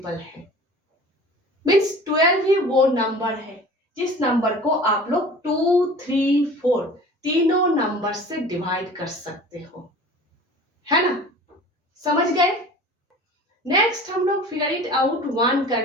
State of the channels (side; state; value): both; normal; correlation 0.42